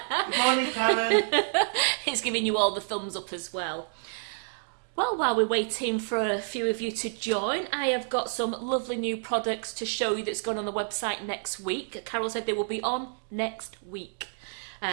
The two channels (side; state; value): left; silent; digital silence